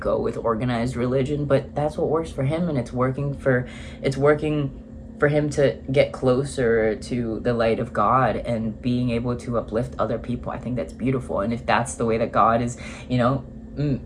with organized religion, but that's what works for him, and it's working for him to get closer to the light of God and being able to uplift other people. I think that's beautiful, and if that's the way that God is,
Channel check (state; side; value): identical; both; correlation 1.00